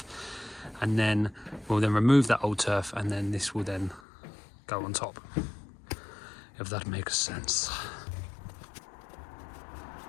and then we'll then remove that old turf, and then this will then go on top, if that makes sense.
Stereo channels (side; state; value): right; drops out; at 4.0 s